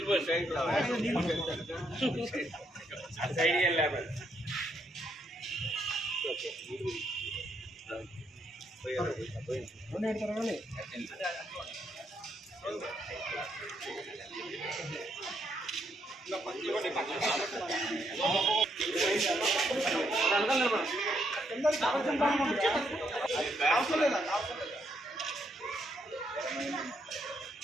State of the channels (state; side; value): normal; both; correlation 0.75